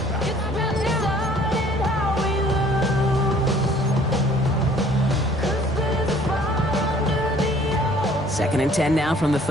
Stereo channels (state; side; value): normal; both; correlation 0.56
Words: Second and 10 now from the